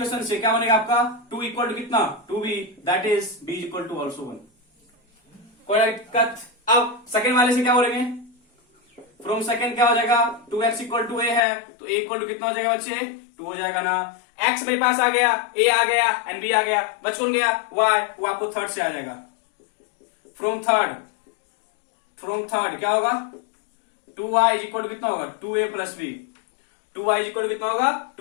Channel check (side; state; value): right; drops out; at 11.4 s